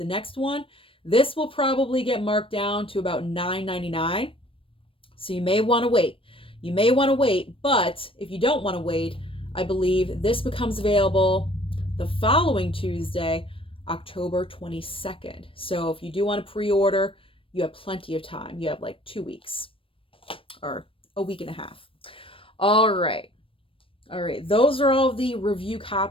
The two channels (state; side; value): late; right; 0.26 ms